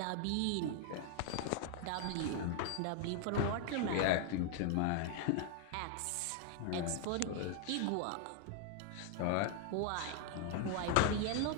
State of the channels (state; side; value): different; both; correlation 0.00